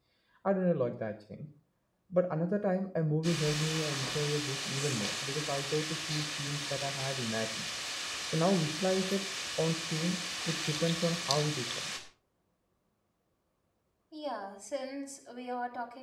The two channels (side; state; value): both; identical; correlation 1.00